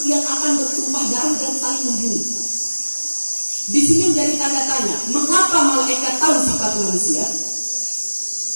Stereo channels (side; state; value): both; inverted; correlation -1.00